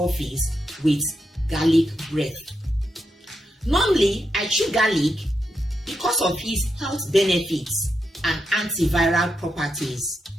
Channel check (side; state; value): both; normal; correlation 0.84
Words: with garlic breath. Normally, I chew garlic because of its health benefits and antiviral properties.